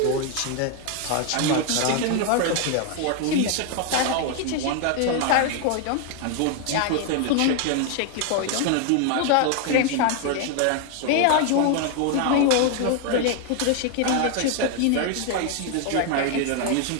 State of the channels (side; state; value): both; different; correlation 0.00